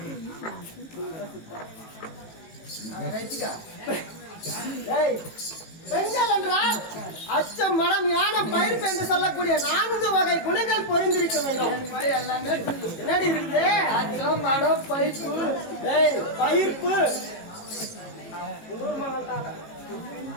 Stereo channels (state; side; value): late; right; 18 ms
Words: பெண்கள் என்றால் அச்சம் மனம் யானம் பயிர்ப்பு என்று சொல்லக்கூடிய 4 வகை குணங்கள் பொருந்திருக்க வேண்டும். என்னடி இருக்குது? அச்சம் மனம் பயிர்ப்பு பயிர்ப்பு